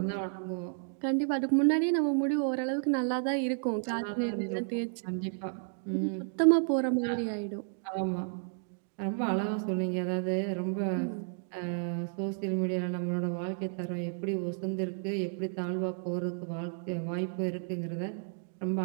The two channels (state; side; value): silent; left; digital silence